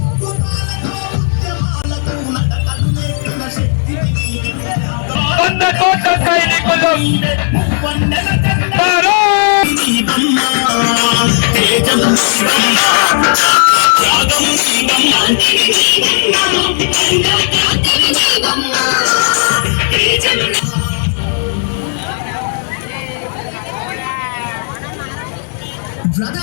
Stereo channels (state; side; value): silent; right; 72 dB below the other